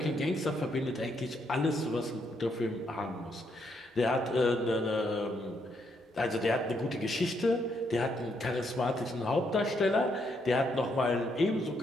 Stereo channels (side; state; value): both; normal; correlation 0.75